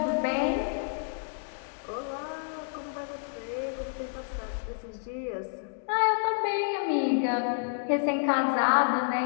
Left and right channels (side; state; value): right; silent; digital silence